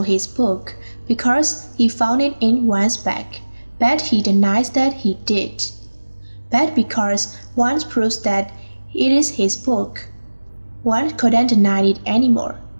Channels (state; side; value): inverted; both; correlation -1.00